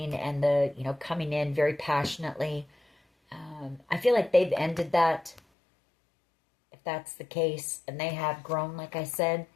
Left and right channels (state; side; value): drops out; right; at 5.4 s